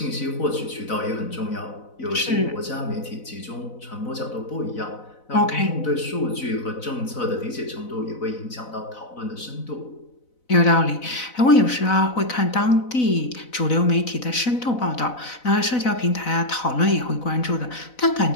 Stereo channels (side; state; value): right; late; 4.0 ms